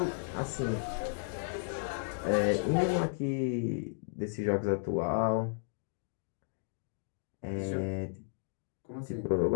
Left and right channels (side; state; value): right; silent; digital silence